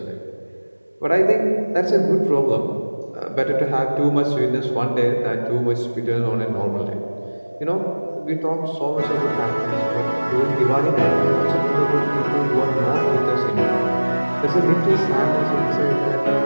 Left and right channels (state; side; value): inverted; both; correlation -1.00